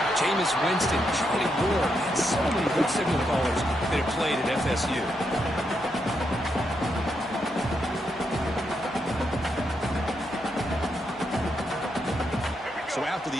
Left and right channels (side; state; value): both; normal; correlation 0.81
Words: Jameis Winston, Charlie Ward, and so many good signal callers that have played at FSU. So after